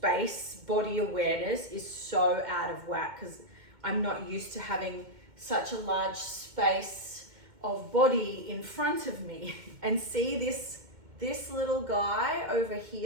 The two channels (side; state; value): left; late; 2.2 ms